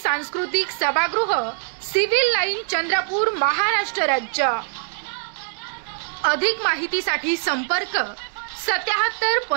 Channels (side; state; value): left; silent; digital silence